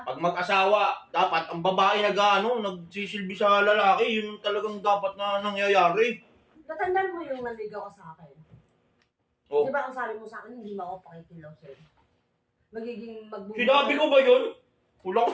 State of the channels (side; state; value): both; identical; correlation 1.00